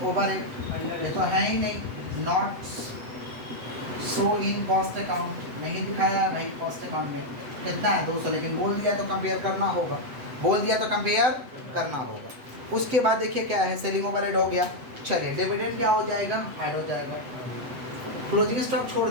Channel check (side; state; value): left; late; 8.0 ms